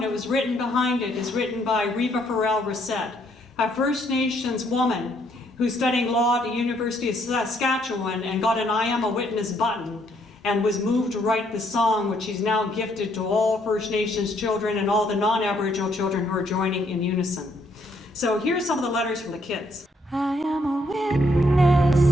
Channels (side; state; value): both; normal; correlation 0.70